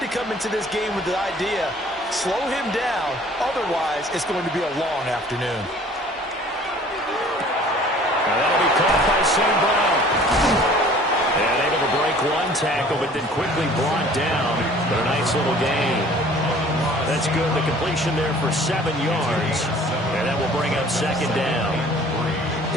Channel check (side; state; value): both; normal; correlation 0.51